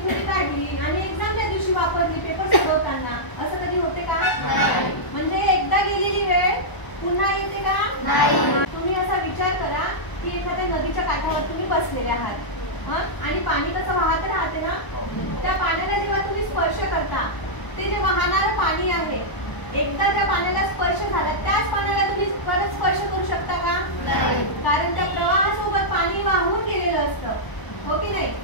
थोडी काढली आणि एक्झामच्या दिवशी वापरली पेपर सोडवताना, असं कधी होते का? म्हणजे एकदा गेलेली वेळ पुन्हा येते का? तुम्ही असा विचार करा की एखाद्या नदीच्या काठावर तुम्ही बसलेले आहात आणि पाणी कसं वाहत राहते ना, त्या पाण्याला जेव्हा तुम्ही स्पर्श करता ते जे वाहणारं पाणी आहे, एकदा त्या पाण्याला स्पर्श झाला त्याच पाण्याला तुम्ही परत स्पर्श करू शकता का? कारण त्या प्रवाहासोबत पाणी वाहून गेलेलं असतं, हो की नाही?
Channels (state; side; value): late; right; 1.0 ms